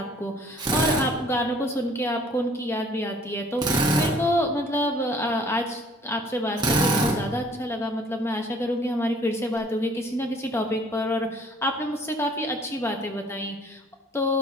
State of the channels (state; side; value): normal; both; correlation 0.56